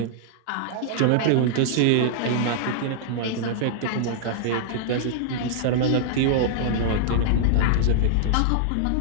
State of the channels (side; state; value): both; different; correlation -0.01